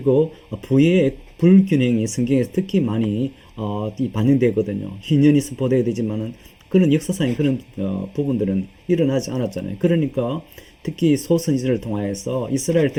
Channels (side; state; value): both; identical; correlation 1.00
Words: 부의 불균형이 성경에서 특히 많이 반영되거든요. 희년이 선포되어야 되지만은 그런 역사상의 그런 부분들은 일어나지 않았잖아요. 그러니까 특히 소선지자를 통하여서 이스라엘